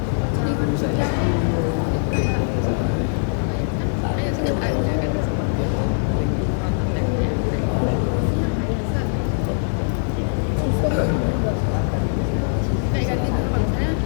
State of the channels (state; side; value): silent; right; digital silence